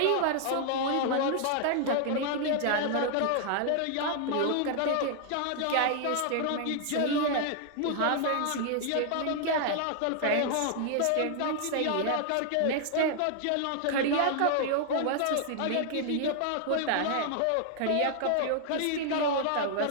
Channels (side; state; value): both; different; correlation 0.00